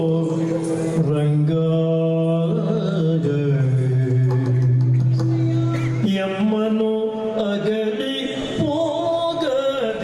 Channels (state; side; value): identical; both; correlation 1.00